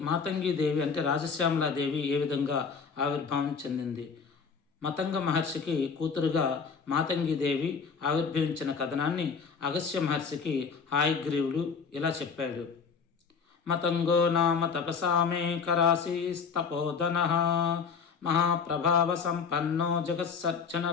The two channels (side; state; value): right; quieter; 5.7 dB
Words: మాతంగి దేవి అంటే రాజశ్యామలాదేవి ఏ విధంగా ఆవిర్భావం చెందింది. మతంగ మహర్షికి కూతురుగా మాతంగి దేవి ఆవిర్భవించిన కథనాన్ని అగస్త్య మహర్షికి హయగ్రీవుడు ఇలా చెప్పాడు. మతంగో నామ తపసామే కరాశీస్తపోధనః మహాప్రభావ సంపన్నో